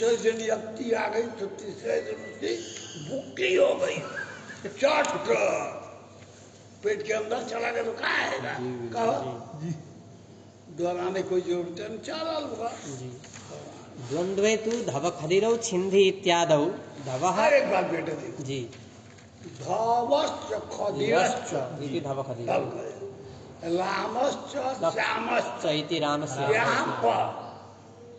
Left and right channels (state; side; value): identical; both; correlation 1.00